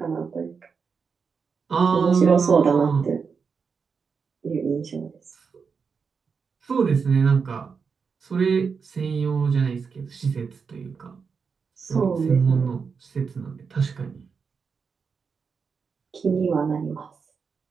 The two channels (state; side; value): quieter; left; 5.6 dB